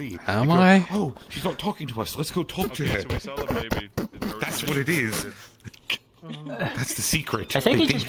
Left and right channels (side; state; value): both; identical; correlation 1.00